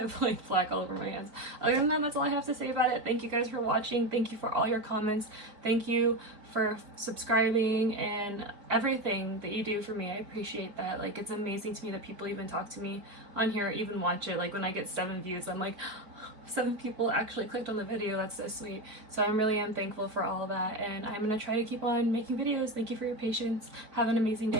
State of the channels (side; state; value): left; late; 4.6 ms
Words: have like black all over my hands. Other than that, that's all I have to say about it. Thank you guys for watching. Thank you for all your comments. Thank you for subscribing and everything that you do for me. I appreciate that. Like, it's amazing to me that people even talk to me on here, even watch it. Like, when I get 7 views, I'm like, 7 people actually clicked on the video. That's so sweet. So I really am thankful for all of that, and I'm gonna try to keep on making videos. Thank you for your patience. Have an amazing